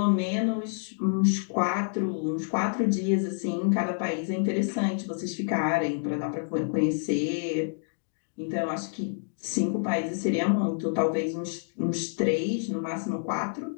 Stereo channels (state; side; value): silent; right; digital silence